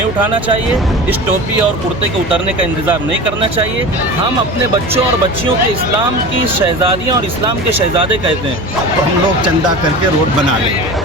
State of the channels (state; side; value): normal; both; correlation 0.32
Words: اٹھانا چاہیے، اس ٹوپی اور کرتے کے اترنے کا انتظار نہیں کرنا چاہیے۔ ہم اپنے بچوں اور بچیوں کے اسلام کی شہزادیاں اور اسلام کے شہزادے کہتے ہیں، تو ہم لوگ چندہ کر کے روڈ بنا لیں۔